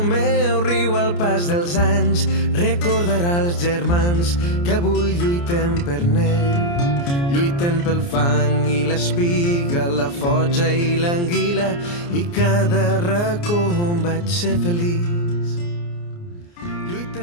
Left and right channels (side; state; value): right; late; 29 ms